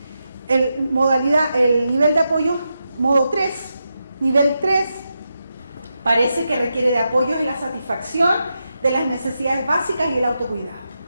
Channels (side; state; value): both; inverted; correlation -0.87